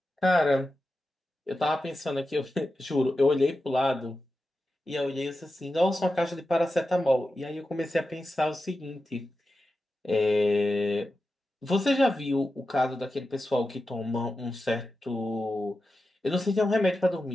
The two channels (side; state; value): both; normal; correlation 0.91